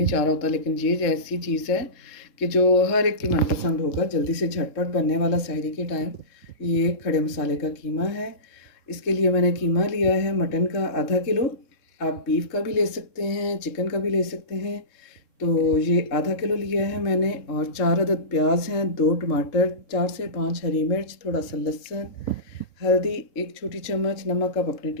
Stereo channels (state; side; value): late; right; 3.7 ms